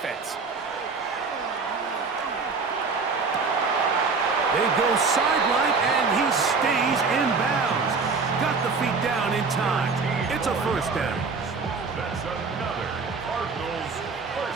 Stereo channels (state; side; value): quieter; left; 4.6 dB